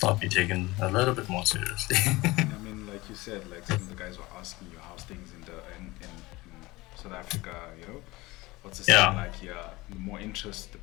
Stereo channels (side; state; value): right; quieter; 20.9 dB